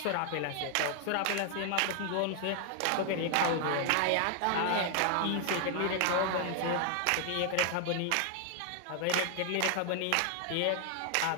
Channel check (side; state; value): both; different; correlation 0.00